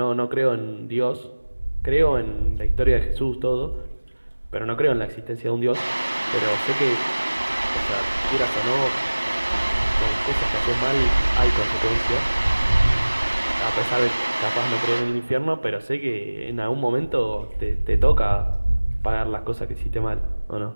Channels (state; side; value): inverted; both; correlation -1.00